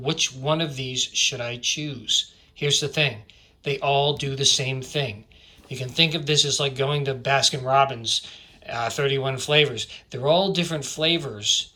one of these should I choose? Here's the thing. They all do the same thing. You can think of this as like going to Baskin-Robbins, 31 flavors. They're all different flavors,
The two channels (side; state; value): both; identical; correlation 1.00